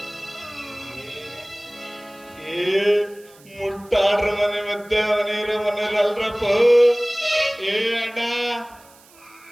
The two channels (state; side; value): noise; right; hiss, 26 dB below the sound